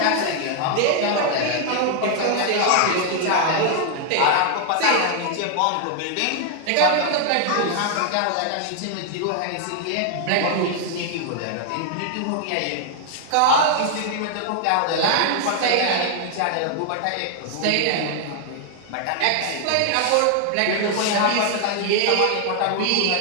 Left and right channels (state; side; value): different; both; correlation 0.00